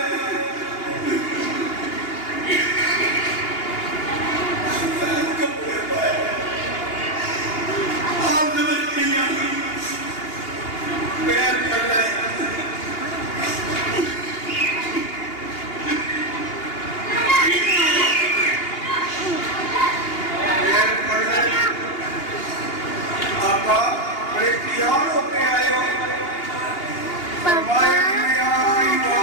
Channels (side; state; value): right; late; 2.8 ms